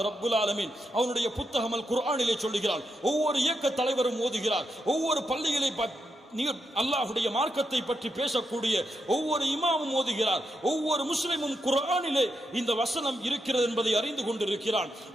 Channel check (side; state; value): both; normal; correlation 0.84